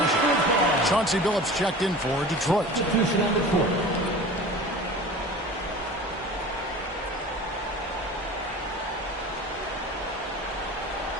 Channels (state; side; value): normal; both; correlation 0.38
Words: Chauncey Billups checked in for Detroit. Substitution on the court.